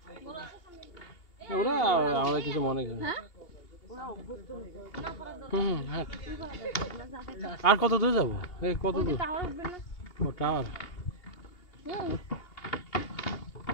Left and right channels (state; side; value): late; right; 2.8 ms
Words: ওরা আমরা কিছু মনে করি হ্যাঁ আর কত দূর যাবো এই কত দূর ও টাওয়ার